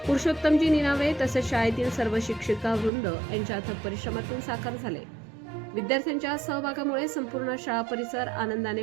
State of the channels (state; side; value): drops out; left; at 2.9 s